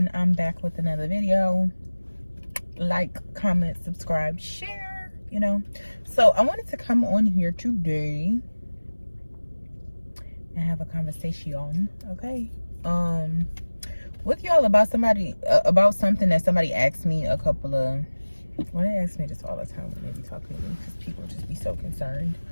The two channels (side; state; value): both; inverted; correlation -1.00